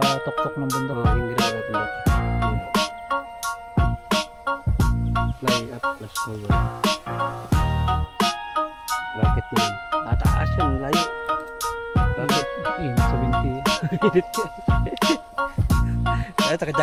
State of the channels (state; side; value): identical; both; correlation 1.00